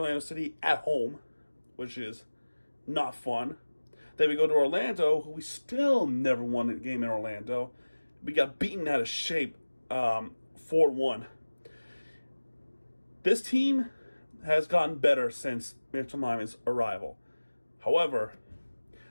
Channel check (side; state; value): both; inverted; correlation -1.00